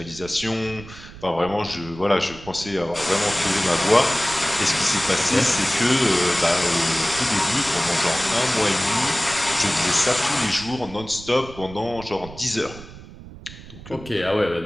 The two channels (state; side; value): noise; right; rumble, 16 dB below the sound